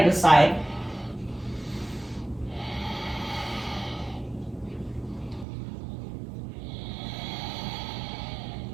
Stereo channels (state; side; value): drops out; left; at 5.5 s